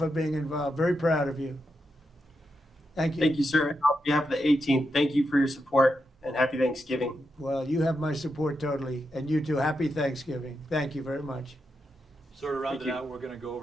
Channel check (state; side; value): normal; both; correlation 0.85